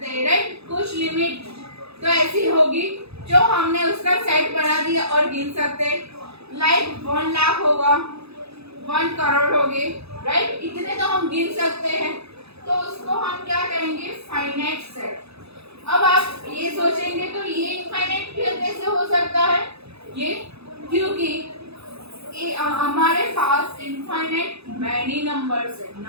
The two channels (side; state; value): left; late; 0.79 ms